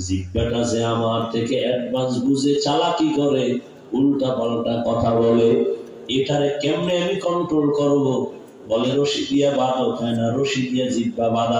জিহ্বাটা যে আমার থেকে অ্যাডভান্স বুঝে চালাকি করে, উল্টা পাল্টা কথা বলে, এটারে কেমনে আমি কন্ট্রোল করব? বলে রশি দিয়া বাঁধা যায় না, রশি দিয়া জিহ্বা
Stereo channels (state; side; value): identical; both; correlation 1.00